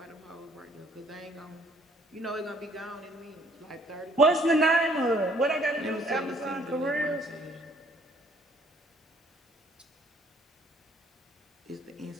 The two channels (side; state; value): both; normal; correlation 0.62